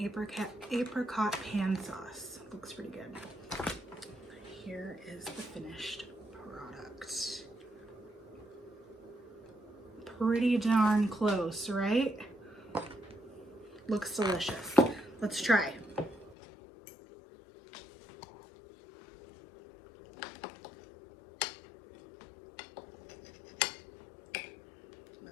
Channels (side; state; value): right; drops out; at 16.4 s